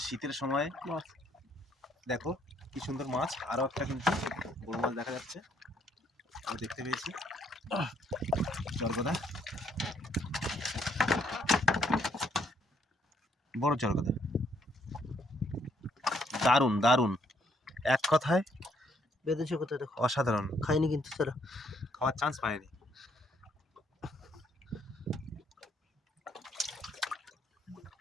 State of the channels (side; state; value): both; normal; correlation 0.70